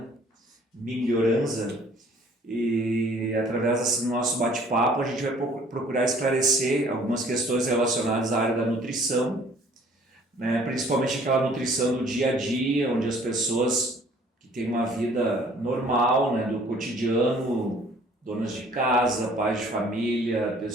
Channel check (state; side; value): normal; both; correlation 0.56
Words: Miglioranza e através desse nosso bate-papo a gente vai procurar esclarecer algumas questões relacionadas à área da nutrição, né? Principalmente aquela nutrição do dia a dia, onde as pessoas que têm uma vida normal, né, do cotidiano, donas de casa, pais de família,